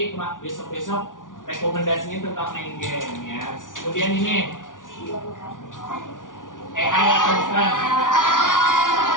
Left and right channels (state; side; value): late; right; 0.88 ms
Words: besok-besok rekomendasinya tentang main game ya. Kemudian ini AI atau bukan?